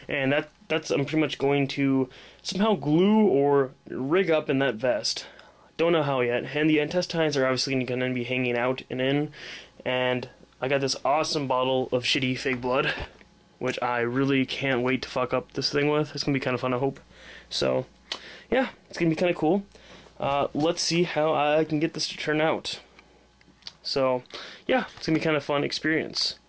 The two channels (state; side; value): identical; both; correlation 1.00